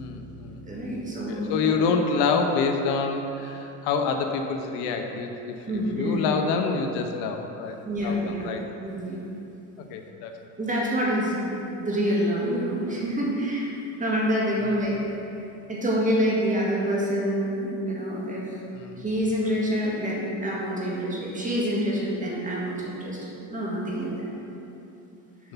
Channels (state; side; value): normal; both; correlation 0.30